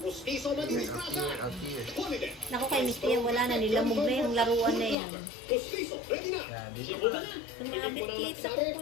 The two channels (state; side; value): drops out; right; at 5.0 s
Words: Pustiso na dinisgrasya. Holiday. Naku kay Misty yan, wala na. Nilamog na yung laruan na yan. Pustiso, ready na. Yan, dito ka. Sumabit kit sa kuko